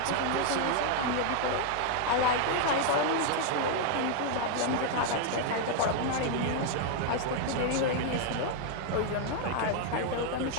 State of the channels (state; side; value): different; both; correlation 0.00